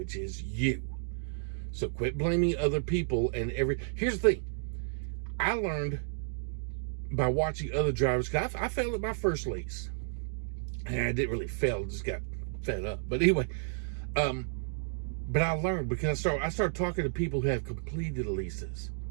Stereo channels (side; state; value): left; silent; digital silence